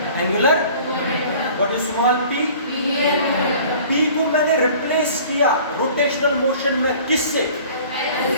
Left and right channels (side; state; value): both; inverted; correlation -0.48